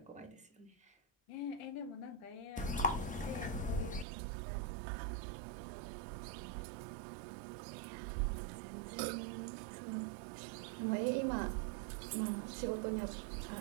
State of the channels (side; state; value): left; drops out; at 4.0 s